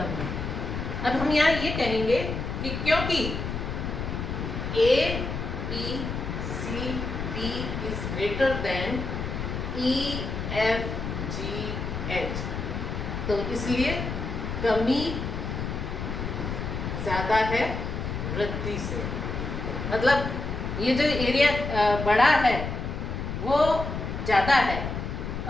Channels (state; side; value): noise; left; rumble, 4 dB below the sound